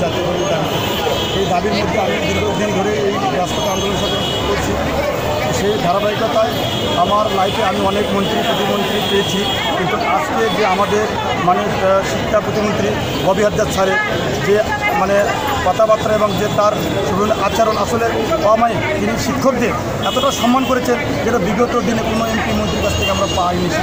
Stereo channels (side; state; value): both; identical; correlation 1.00